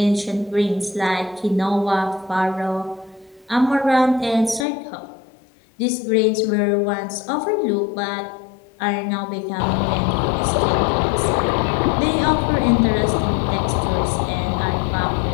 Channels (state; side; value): drops out; right; at 4.7 s